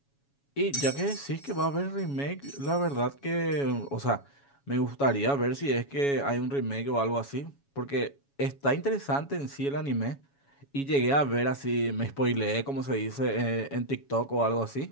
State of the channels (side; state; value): right; late; 7.2 ms